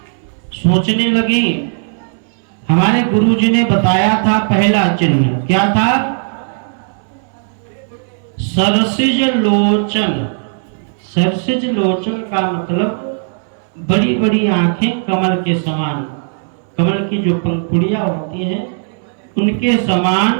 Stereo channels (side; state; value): left; silent; digital silence